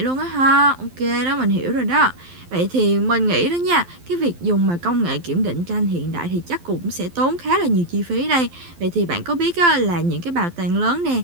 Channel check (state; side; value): late; left; 12 ms